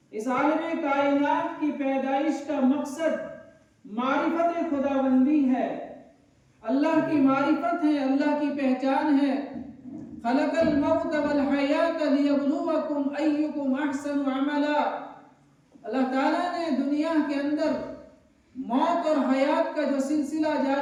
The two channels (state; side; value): identical; both; correlation 1.00